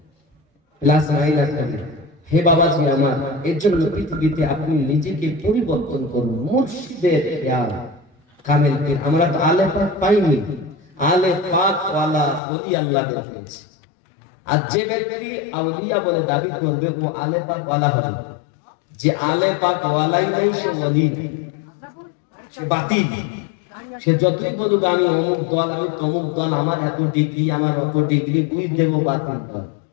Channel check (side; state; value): right; drops out; at 12.4 s